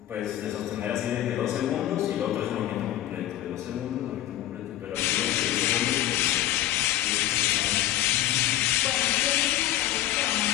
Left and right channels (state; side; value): quieter; right; 13.8 dB